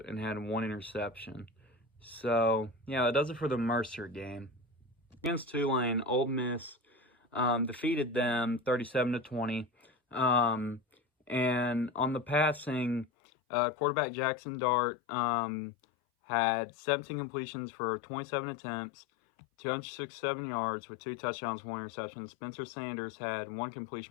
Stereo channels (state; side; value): drops out; right; at 13.1 s